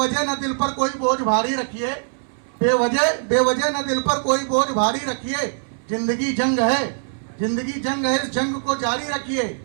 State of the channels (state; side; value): silent; left; 64 dB below the other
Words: न दिल पर कोई बोझ भारी रखिए, बेवजह न दिल पर कोई बोझ भारी रखिए। जिंदगी जंग है, जिंदगी जंग है, इस जंग को जारी रखिए।